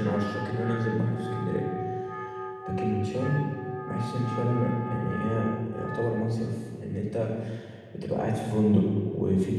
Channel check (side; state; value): both; identical; correlation 1.00